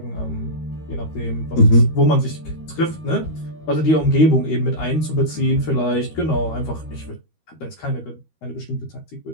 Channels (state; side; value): late; right; 13 ms